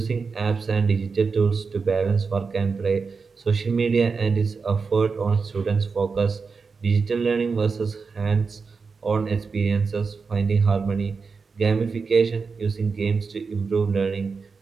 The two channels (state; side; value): quieter; left; 4.9 dB